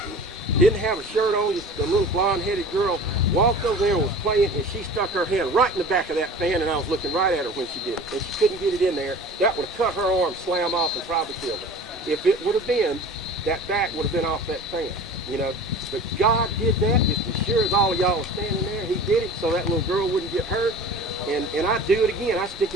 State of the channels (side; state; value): both; normal; correlation 0.40